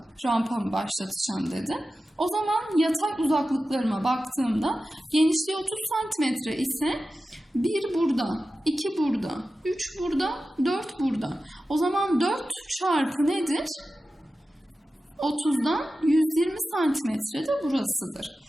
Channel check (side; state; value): both; normal; correlation 0.94